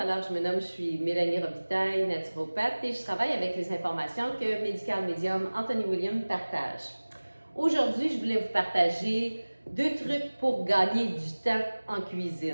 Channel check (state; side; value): inverted; both; correlation -1.00